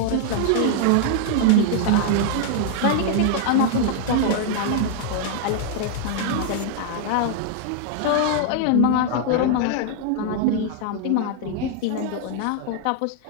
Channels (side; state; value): both; different; correlation 0.00